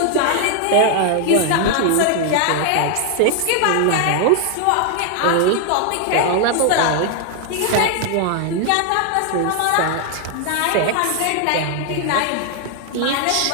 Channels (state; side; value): different; both; correlation 0.00